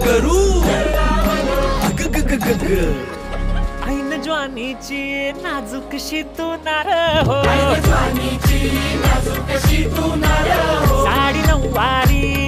करू ऐन ज्वानीची नाजूकशी तू नार हो साडी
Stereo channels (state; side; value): identical; both; correlation 1.00